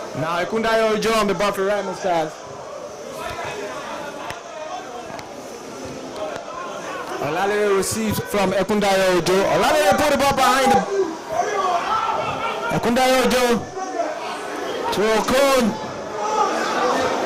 Now Ekundayo Ojo on the ball for Remo Stars. Olawale receives from Ekundayo Ojo. Olawale put the ball behind Ekundayo Ojo to Okon.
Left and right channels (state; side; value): identical; both; correlation 1.00